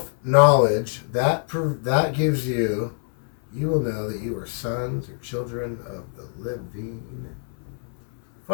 that gives you will know that you are sons or children of the living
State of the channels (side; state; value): right; silent; 62 dB below the other